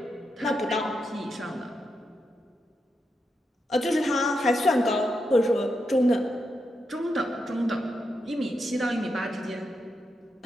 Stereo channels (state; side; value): normal; both; correlation 0.85